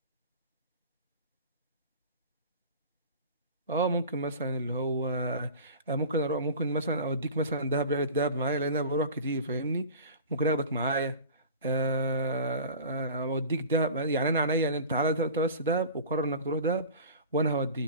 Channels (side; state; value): both; inverted; correlation -0.38